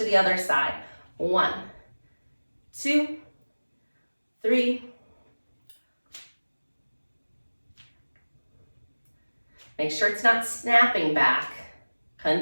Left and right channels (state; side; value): inverted; both; correlation -1.00